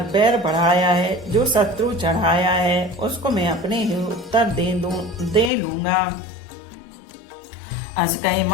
बैर बढ़ाया है, जो शत्रु चढ़ाया है उसको मैं अपने ही उत्तर दे लूंगा। अस कही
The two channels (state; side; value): drops out; right; at 5.5 s